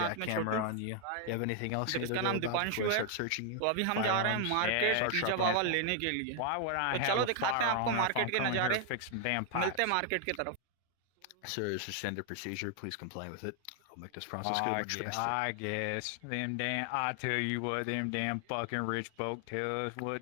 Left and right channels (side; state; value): both; different; correlation 0.00